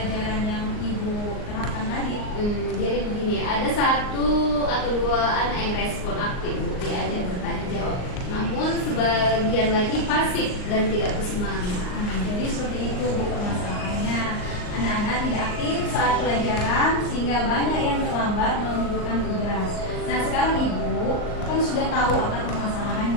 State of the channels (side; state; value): right; late; 38 ms